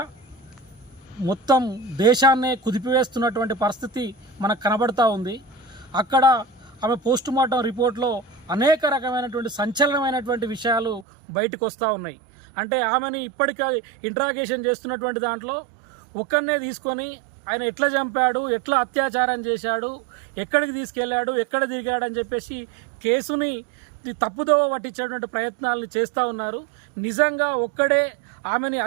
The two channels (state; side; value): drops out; left; at 11.1 s